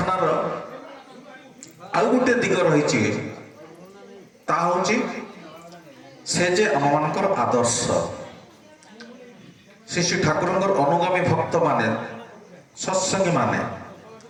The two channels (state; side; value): identical; both; correlation 1.00